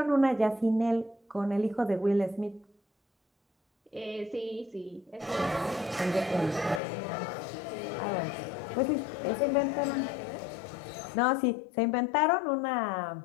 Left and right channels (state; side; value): drops out; right; at 6.8 s